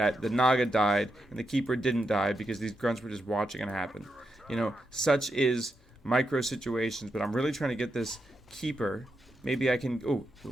the Naga died and the Keeper didn't die because these grunts were just watching it happen. You know, such is micro situations, but I'm really trying to get this Keeper. Maybe I can... Oh,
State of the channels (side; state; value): both; normal; correlation 0.85